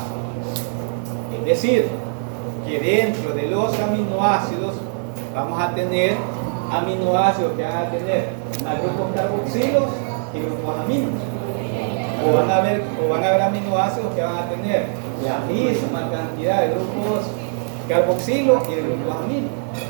Es decir, que dentro de los aminoácidos vamos a tener aminoácidos que van a tener grupos carboxilos y grupos aminos. O van a haber aminoácidos que van a tener la misma cantidad de grupos carboxilos y de grupos aminos.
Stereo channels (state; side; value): silent; left; 61 dB below the other